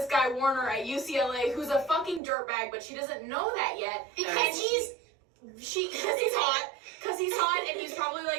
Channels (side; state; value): left; drops out; at 2.2 s